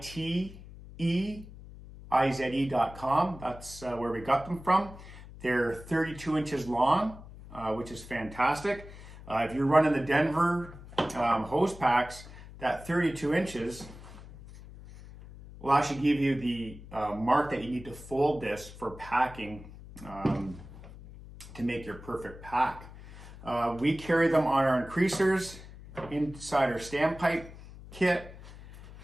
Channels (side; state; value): left; noise; hum, 16 dB below the sound